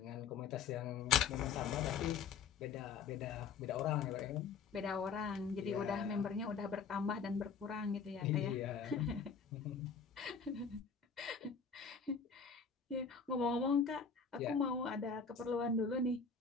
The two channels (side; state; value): right; quieter; 5.8 dB